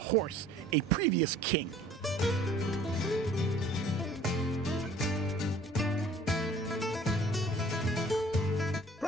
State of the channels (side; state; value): both; normal; correlation 0.52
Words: a previous king.